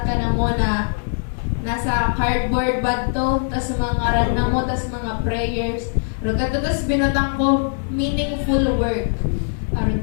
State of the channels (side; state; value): right; silent; 64 dB below the other